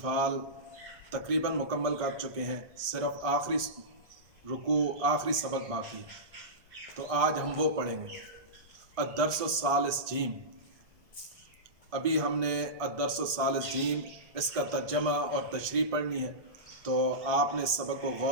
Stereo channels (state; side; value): late; left; 1.5 ms